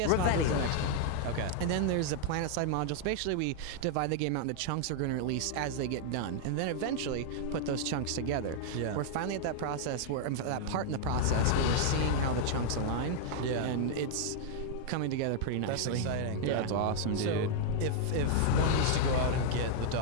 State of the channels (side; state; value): both; different; correlation -0.01